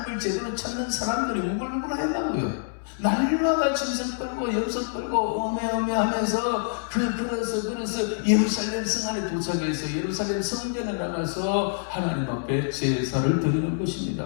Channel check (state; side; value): silent; right; digital silence